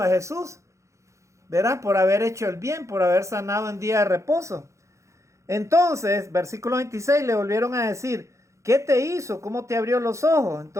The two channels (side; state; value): left; late; 0.14 ms